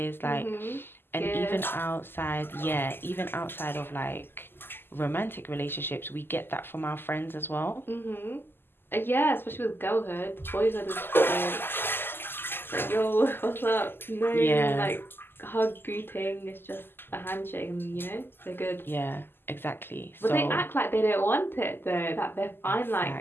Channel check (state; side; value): late; right; 0.10 ms